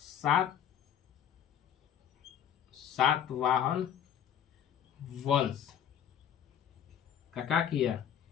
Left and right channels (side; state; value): right; quieter; 9.2 dB